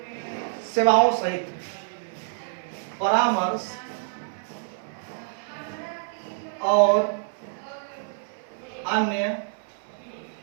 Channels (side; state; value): left; silent; 60 dB below the other